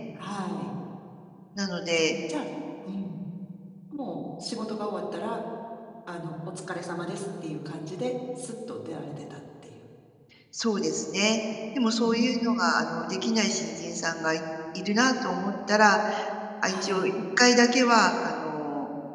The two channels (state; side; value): identical; both; correlation 1.00